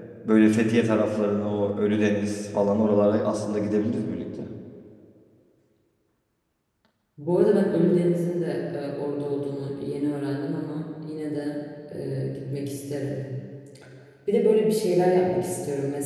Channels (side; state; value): both; identical; correlation 1.00